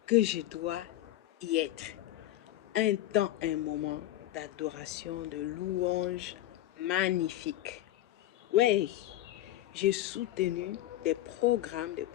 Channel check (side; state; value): right; quieter; 14.4 dB